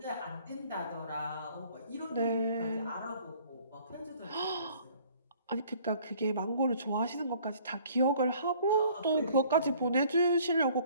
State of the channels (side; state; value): both; inverted; correlation -0.56